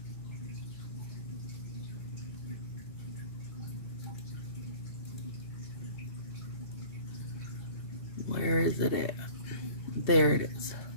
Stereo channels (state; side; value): late; right; 2.7 ms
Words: Where is it at? There it is.